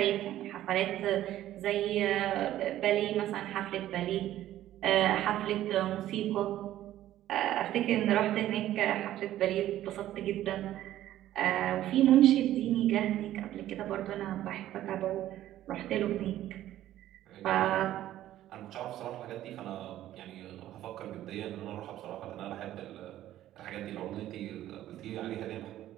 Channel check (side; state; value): left; quieter; 13.3 dB